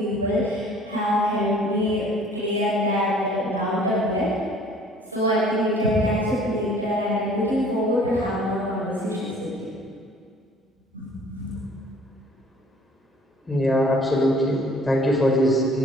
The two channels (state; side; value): normal; both; correlation 0.53